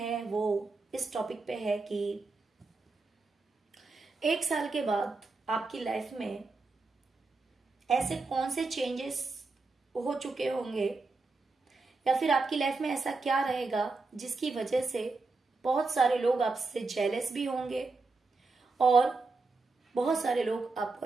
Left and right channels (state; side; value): quieter; left; 3.8 dB